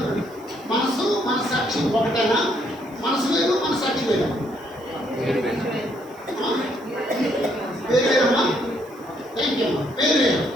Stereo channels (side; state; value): right; noise; hiss, 27 dB below the sound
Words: మనసాక్షి ఒకటేనా? మనసు వేరు మనసాక్షి వేరు. వేరేమ్మా, థ్యాంక్ యూ అమ్మా. వేరే